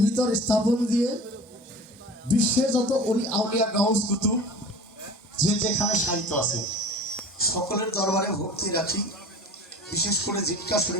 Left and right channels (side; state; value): both; normal; correlation 0.40